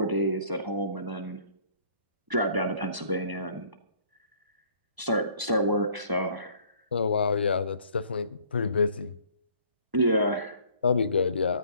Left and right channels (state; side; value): late; left; 1.0 ms